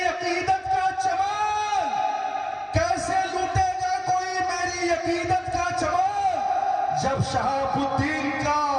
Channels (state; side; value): identical; both; correlation 1.00